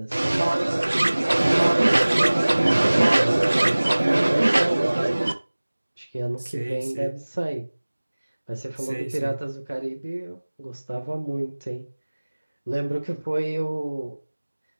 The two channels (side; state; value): both; inverted; correlation -1.00